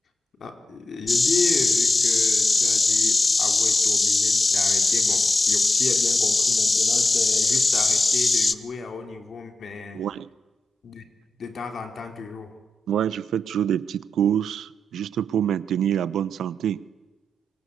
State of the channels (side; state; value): both; normal; correlation 0.89